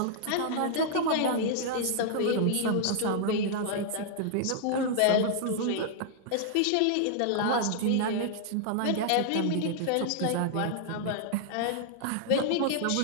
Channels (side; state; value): both; different; correlation -0.01